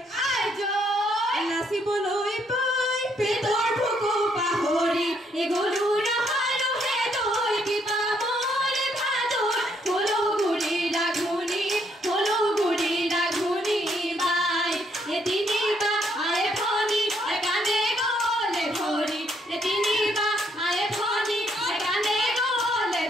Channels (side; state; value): both; normal; correlation 0.72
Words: নাচিবলৈ পাই পেটৰ ভোকো পাহৰি এগলু ৰহালো হে তই কিবা মৰে ভাদৰ হলো গুৰি ৰাঘুনি বাই এতিনিবা আয়ে ভনি একানে গলে ধৰি এতিনিবা আয়ে ভনি একানে গলে